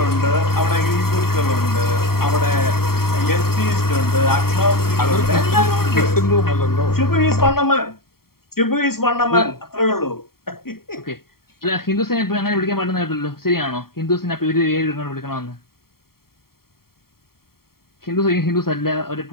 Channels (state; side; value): late; right; 0.93 ms